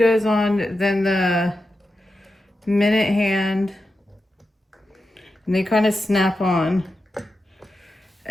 on, then the minute hand, and they kind of snap on.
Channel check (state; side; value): normal; both; correlation 0.90